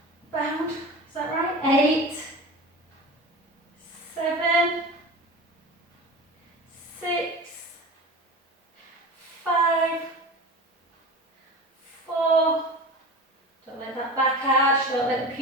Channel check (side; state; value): both; normal; correlation 0.32